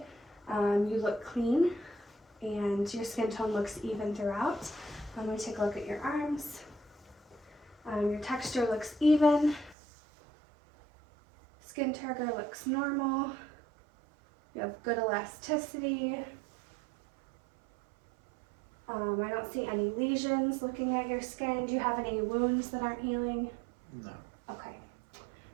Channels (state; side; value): drops out; left; at 9.8 s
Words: You look clean, and your skin tone looks even throughout. I'm going to take a look at your arms. Your texture looks even. Skin turgor looks normal. You have good elasticity. I don't see any lesions looking at your skin. Do you have any wounds that aren't healing? No. Okay.